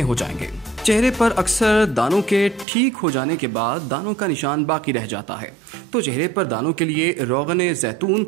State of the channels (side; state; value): left; drops out; at 2.7 s